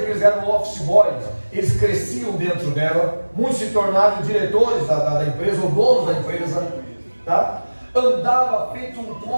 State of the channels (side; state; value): both; inverted; correlation -1.00